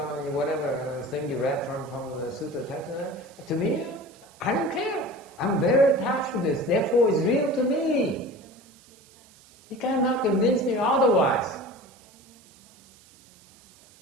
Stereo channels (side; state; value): right; noise; hiss, 26 dB below the sound